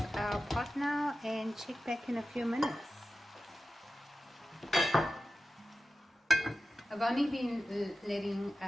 our pot now and check back in a few minutes. I've only been letting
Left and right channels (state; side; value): normal; both; correlation 0.94